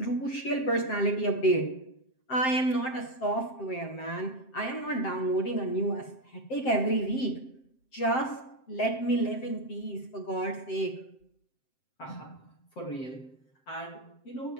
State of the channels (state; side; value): late; right; 7.6 ms